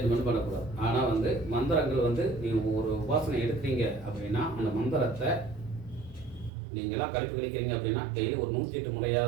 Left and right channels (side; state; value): left; drops out; at 6.5 s